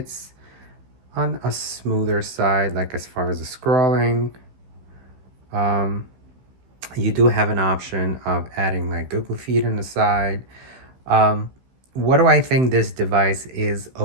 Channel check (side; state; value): left; late; 16 ms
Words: on a smoother side, like as far as the scrolling. You do have an option of adding like Google Feed on the side. What do I think this device is